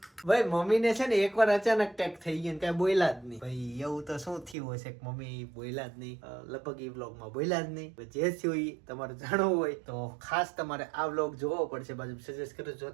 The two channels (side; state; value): left; drops out; at 4.5 s